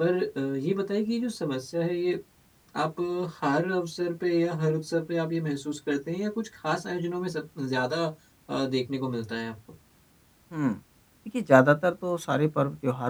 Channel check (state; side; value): identical; both; correlation 1.00